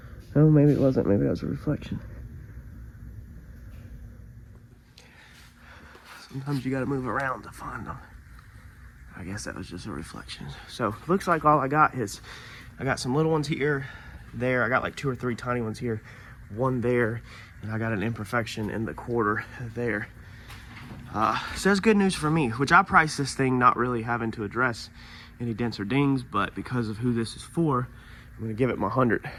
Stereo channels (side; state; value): both; identical; correlation 1.00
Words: Oh, maybe it wasn't. Maybe that was a reflection. Sometimes you got to move around to find them. I guess that was just a reflection. So looks like all I got is, I got some little ones here, there. I got like 2 or 3 tiny ones here, one there, and I got an imperfection in the quarter there. So that's good news for me, which I priced this thing not really having to address any dents or dings, but because of who this is for, I'm gonna give it my 100